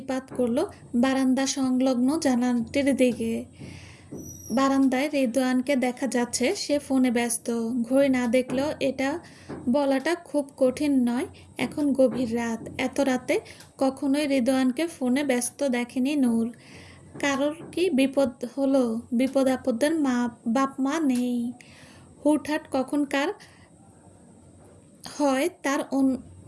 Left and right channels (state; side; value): identical; both; correlation 1.00